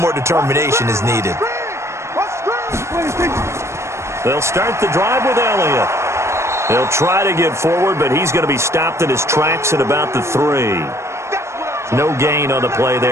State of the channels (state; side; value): late; left; 0.13 ms